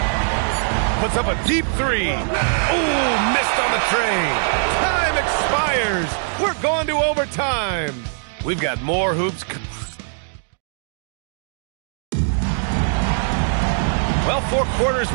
Puts up a deep three. Oh, missed on the train. Time expires. We're going to overtime. We've got more hoops. Well, 4 quarters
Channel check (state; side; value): silent; left; digital silence